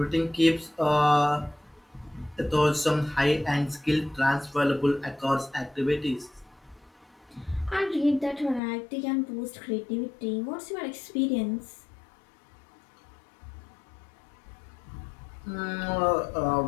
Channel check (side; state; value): right; drops out; at 8.6 s